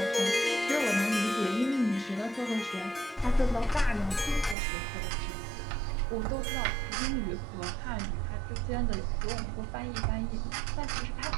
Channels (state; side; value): drops out; left; at 4.5 s